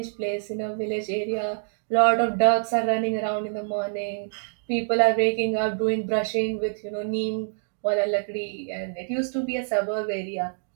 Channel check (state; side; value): silent; left; digital silence